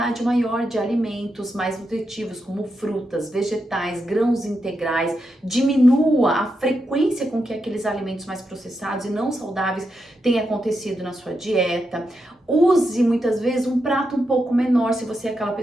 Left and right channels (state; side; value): normal; both; correlation 0.85